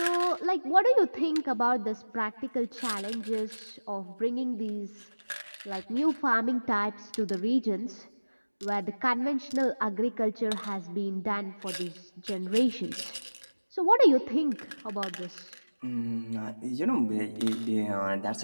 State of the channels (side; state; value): both; inverted; correlation -1.00